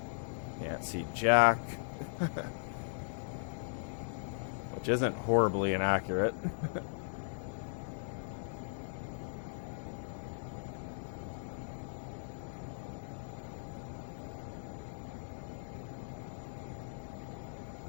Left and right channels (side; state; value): right; silent; 52 dB below the other